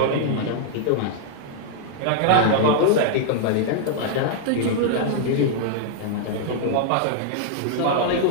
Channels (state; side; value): different; both; correlation -0.01